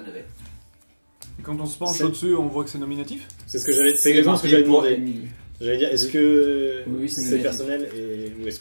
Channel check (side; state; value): both; inverted; correlation -1.00